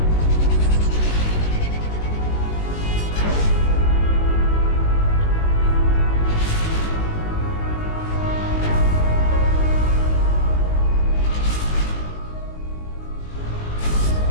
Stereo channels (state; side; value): late; right; 19 ms